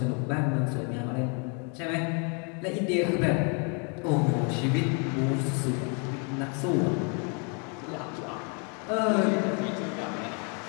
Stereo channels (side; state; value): right; quieter; 37.0 dB